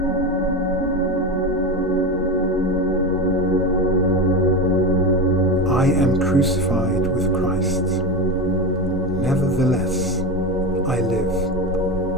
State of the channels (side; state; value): both; normal; correlation 0.19